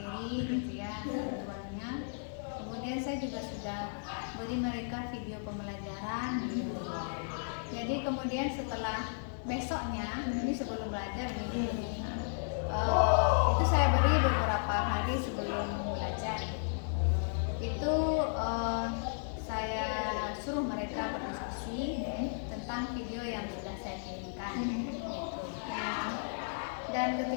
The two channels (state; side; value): silent; right; digital silence